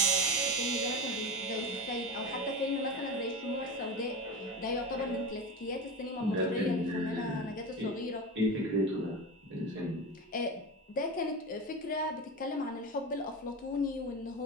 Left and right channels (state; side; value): normal; both; correlation 0.23